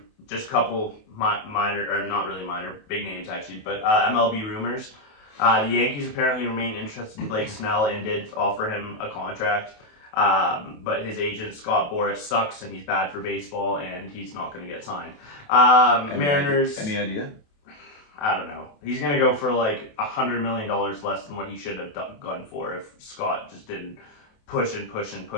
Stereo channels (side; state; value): right; late; 28 ms